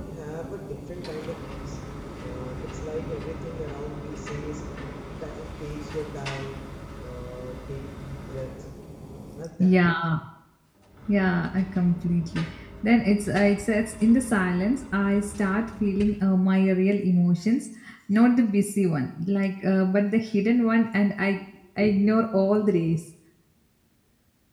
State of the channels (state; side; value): identical; both; correlation 1.00